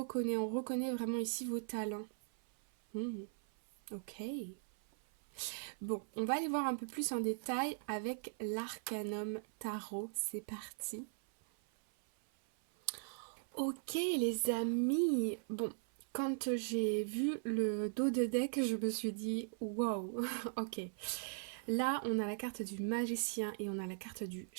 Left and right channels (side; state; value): left; silent; 51 dB below the other